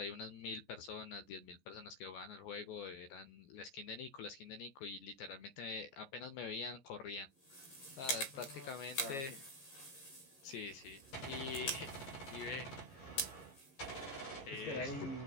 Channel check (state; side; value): late; right; 14 ms